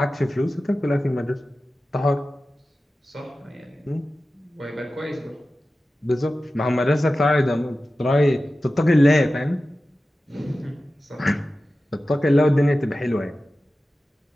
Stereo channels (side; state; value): both; normal; correlation 0.94